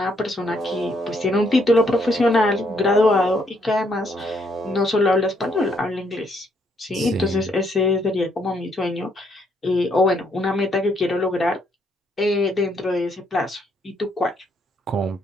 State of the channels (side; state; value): both; normal; correlation 0.71